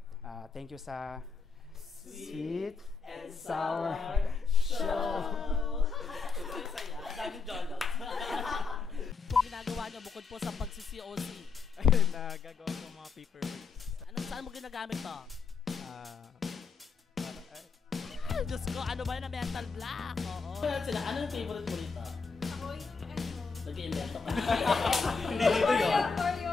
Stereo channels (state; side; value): quieter; right; 4.8 dB